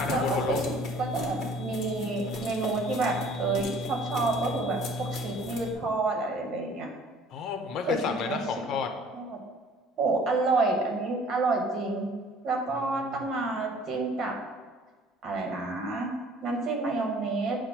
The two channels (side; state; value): both; normal; correlation 0.53